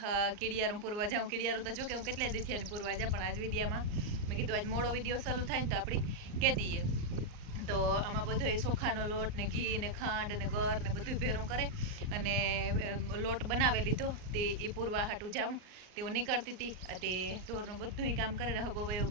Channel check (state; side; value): late; left; 38 ms